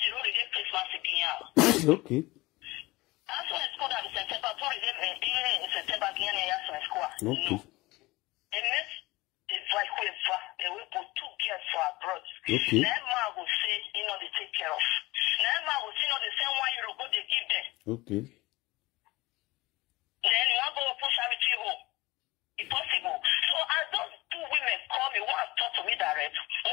already Christmas again. Okay. That's why it's called September. In September again, that's school. Okay. And this is like we put 2 girls for abroad. Okay. Never will say, they take care of. Never will say, the same €1 go they give them. Okay. Then you want to go push charity home. It's possible. So as those 2 women call me, one talk to me direct,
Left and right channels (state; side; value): quieter; right; 21.1 dB